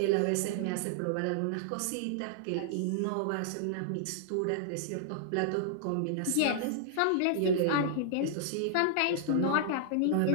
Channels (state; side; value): different; both; correlation -0.01